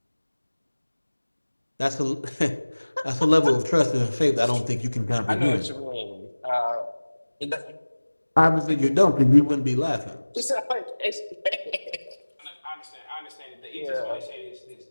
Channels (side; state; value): both; inverted; correlation -1.00